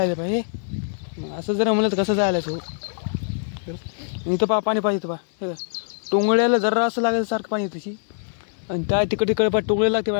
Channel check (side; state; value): right; silent; digital silence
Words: पाय हे असं जर म्हणलं तर कसं जायला सो. इथं पहा पाणी पाहिजे पहा हे का. टोंगळ्याला जरा असं लागेल सारखं पाणी त्याची. आणि त्या तिकडे पा टोंगळ्याला